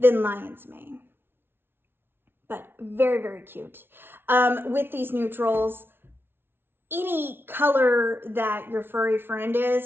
Lion's Mane, but very, very cute. With these neutrals, any color that your furry friend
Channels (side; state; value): left; late; 0.11 ms